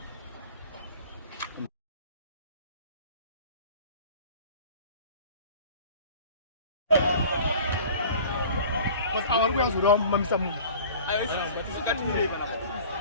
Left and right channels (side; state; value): both; inverted; correlation -0.44